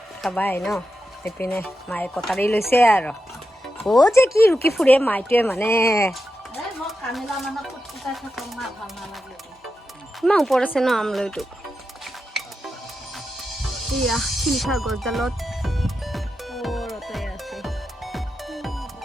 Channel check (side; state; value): both; normal; correlation 0.89